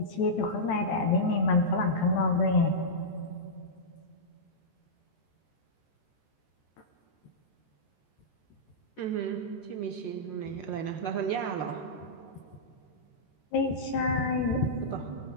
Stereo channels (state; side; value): late; right; 14 ms